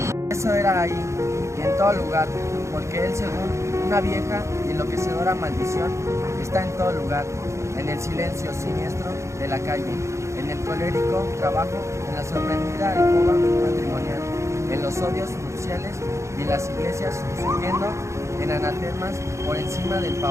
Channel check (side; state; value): left; late; 0.14 ms